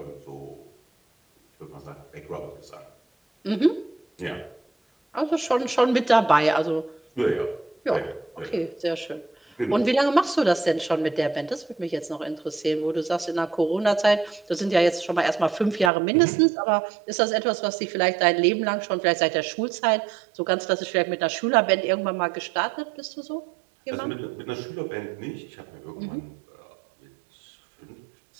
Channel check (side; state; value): left; drops out; at 15.9 s